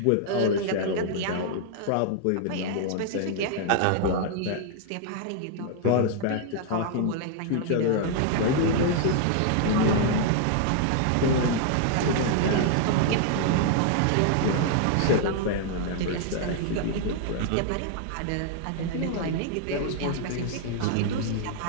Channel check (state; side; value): different; both; correlation 0.00